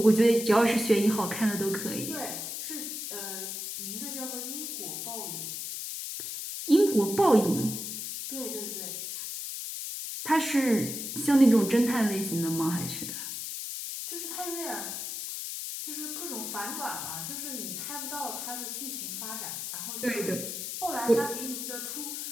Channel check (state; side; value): noise; left; hiss, 5 dB below the sound